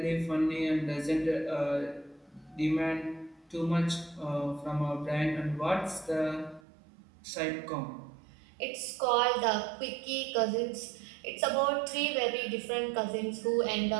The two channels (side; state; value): left; drops out; at 6.6 s